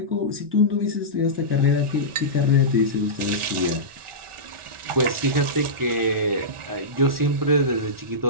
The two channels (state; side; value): late; left; 1.4 ms